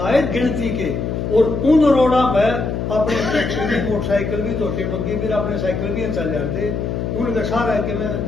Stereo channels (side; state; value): left; noise; hum, 2 dB below the sound